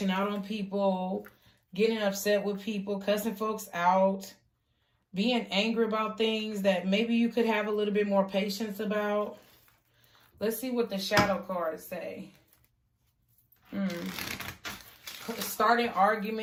out on people, getting upset with people, cussing folks out, being angry about things that maybe you could have a little bit more patience about. Let's see what the shadow cards say. Starting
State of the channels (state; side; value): identical; both; correlation 1.00